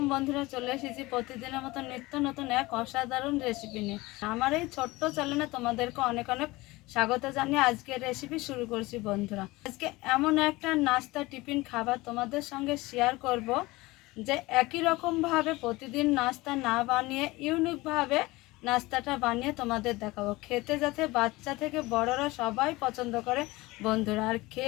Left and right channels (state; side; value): quieter; right; 20.9 dB